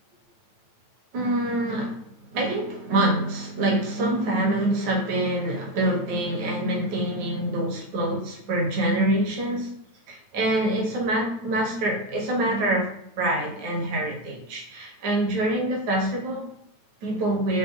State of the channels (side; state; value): left; late; 9.1 ms